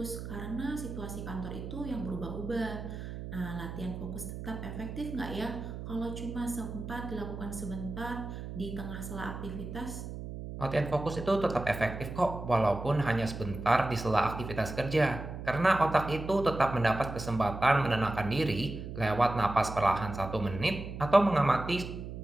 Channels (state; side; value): noise; right; hum, 8 dB below the sound